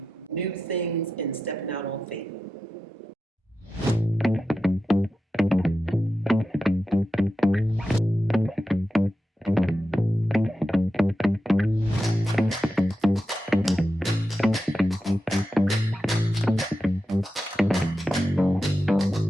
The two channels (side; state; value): both; normal; correlation 0.90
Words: new things and stepping out on faith.